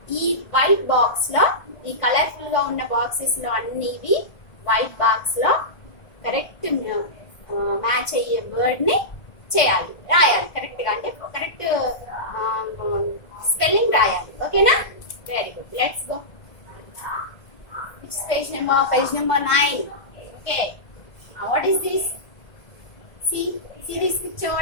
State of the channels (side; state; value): right; late; 1.5 ms